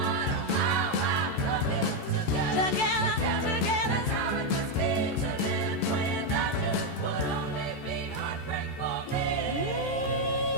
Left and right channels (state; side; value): late; right; 14 ms